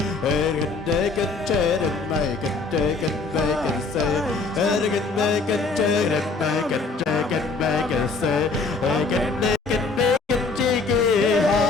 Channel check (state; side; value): quieter; right; 4.0 dB